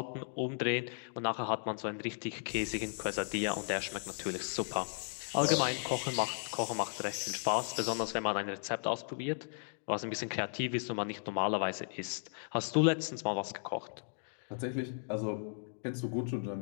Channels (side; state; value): right; silent; digital silence